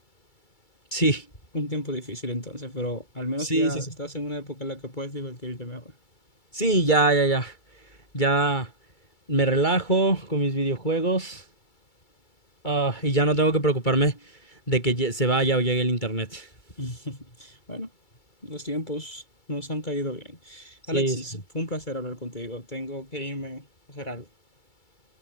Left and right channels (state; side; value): late; right; 2.3 ms